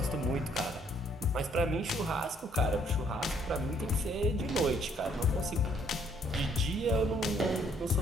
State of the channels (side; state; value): both; normal; correlation 0.65